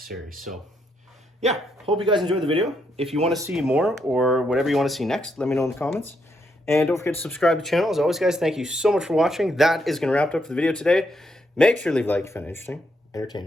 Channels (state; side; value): normal; both; correlation 0.77